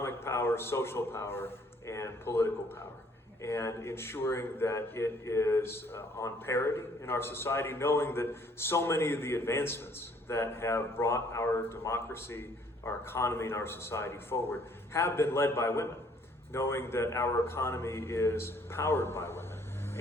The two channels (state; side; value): normal; both; correlation 0.62